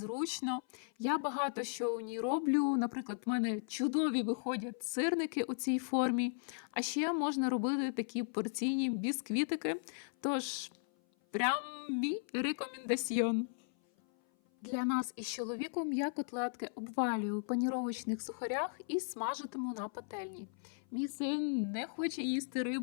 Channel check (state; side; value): silent; right; 53 dB below the other